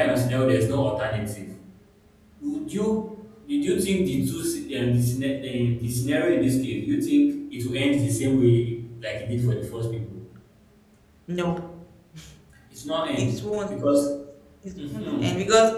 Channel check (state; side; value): identical; both; correlation 1.00